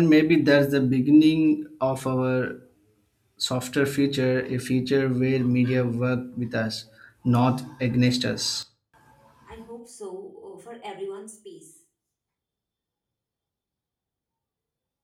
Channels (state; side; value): identical; both; correlation 1.00